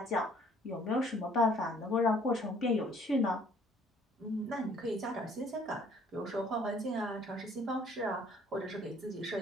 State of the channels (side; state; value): both; normal; correlation 0.59